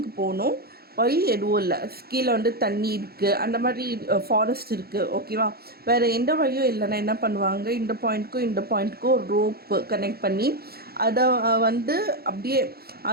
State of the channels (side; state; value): left; late; 0.45 ms